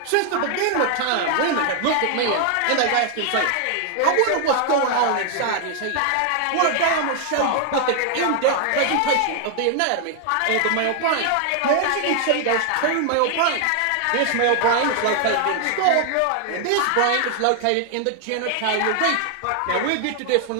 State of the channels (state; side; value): different; both; correlation 0.00